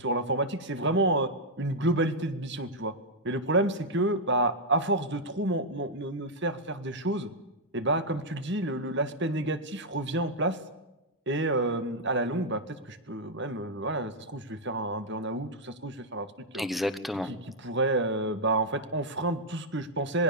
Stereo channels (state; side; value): normal; both; correlation -0.03